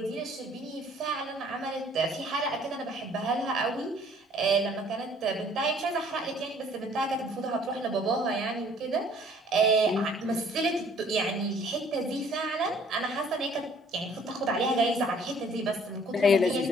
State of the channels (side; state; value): both; normal; correlation 0.57